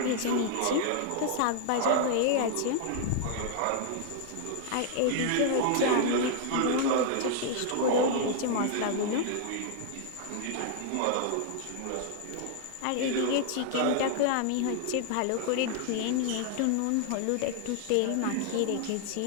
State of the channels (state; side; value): different; both; correlation -0.01